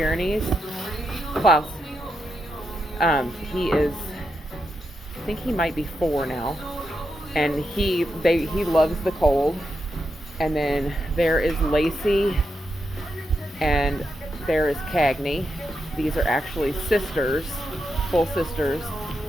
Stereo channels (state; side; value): normal; both; correlation 0.85